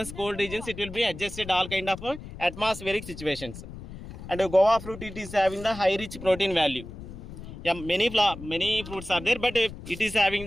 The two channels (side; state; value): left; noise; rumble, 13 dB below the sound